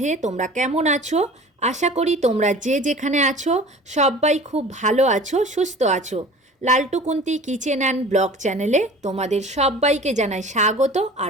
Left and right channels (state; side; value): normal; both; correlation 0.42